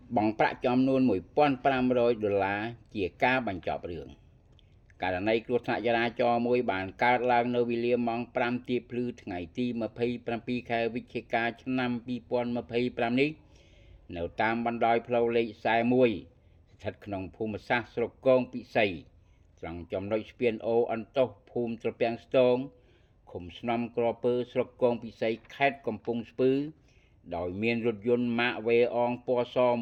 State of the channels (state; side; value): identical; both; correlation 1.00